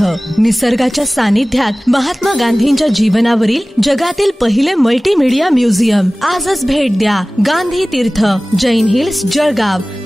निसर्गाच्या सानिध्यात महात्मा गांधींच्या जीवनावरील जगातील पहिले मल्टीमीडिया म्युझियम. आजच भेट द्या. गांधी तीर्थ, जैन हिल्स, जळगाव.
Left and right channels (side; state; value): both; normal; correlation 0.98